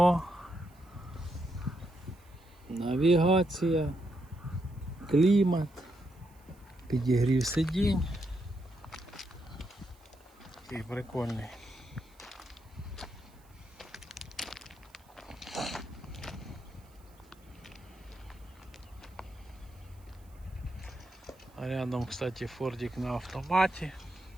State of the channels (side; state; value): right; noise; hiss, 30 dB below the sound